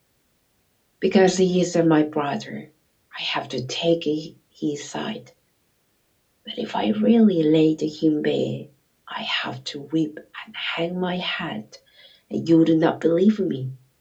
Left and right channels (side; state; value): both; identical; correlation 1.00